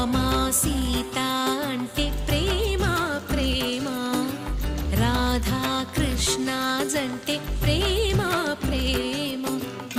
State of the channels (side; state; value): both; identical; correlation 1.00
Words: సీత అంటే ప్రేమ ప్రేమ, రాధా కృష్ణ జంటే ప్రేమ ప్రేమ,